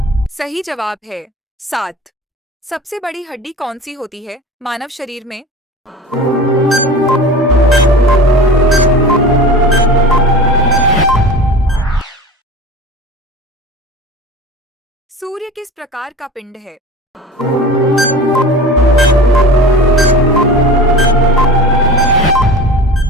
सही जवाब है 7। सबसे बड़ी हड्डी कौन सी होती है मानव शरीर में? सूर्य किस प्रकार का पिंड है?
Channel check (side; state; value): both; normal; correlation 0.36